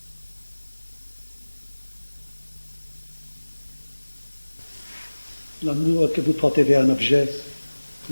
L'amour que vous portez vers un objet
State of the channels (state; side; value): inverted; both; correlation -1.00